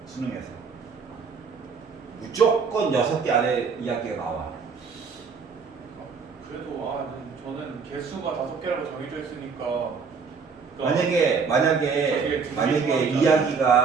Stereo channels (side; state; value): left; quieter; 5.4 dB